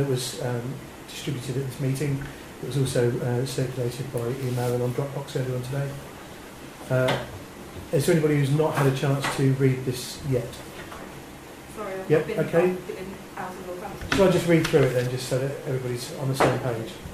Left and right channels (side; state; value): both; identical; correlation 1.00